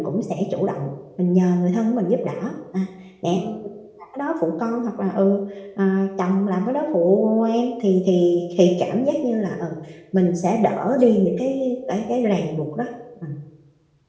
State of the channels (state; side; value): identical; both; correlation 1.00